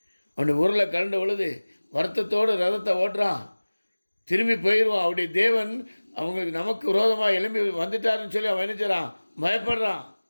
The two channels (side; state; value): both; inverted; correlation -1.00